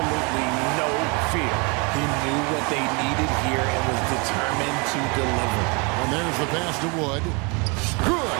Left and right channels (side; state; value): left; quieter; 31.1 dB